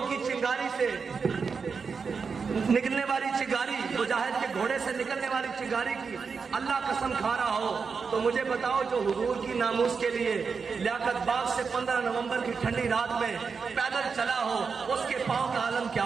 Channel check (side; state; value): left; quieter; 5.4 dB